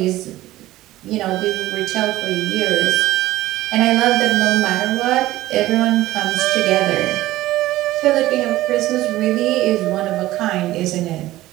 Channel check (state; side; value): quieter; left; 16.1 dB